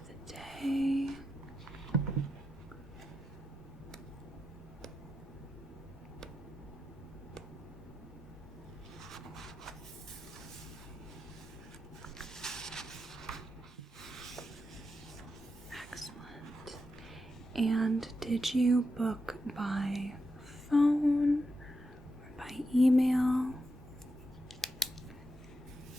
the day. Excellent. And did you book by phone or by email?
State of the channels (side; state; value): both; normal; correlation 0.86